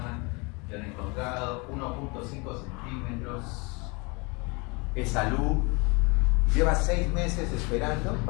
le han encontrado 1.5 centímetros, es salud, lleva 6 meses esperando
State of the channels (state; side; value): quieter; right; 29.0 dB